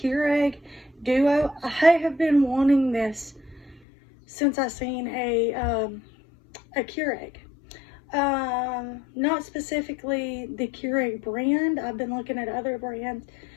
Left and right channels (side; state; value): right; drops out; at 3.8 s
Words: Duo. I have been wanting this since I seen a Keurig. Not specifically the Keurig brand. I've been looking at other brands.